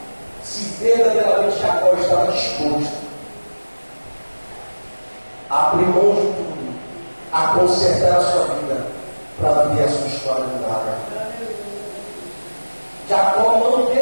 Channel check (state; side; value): inverted; both; correlation -1.00